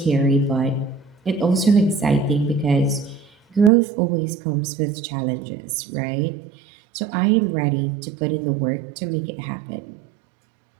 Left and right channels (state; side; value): drops out; left; at 3.7 s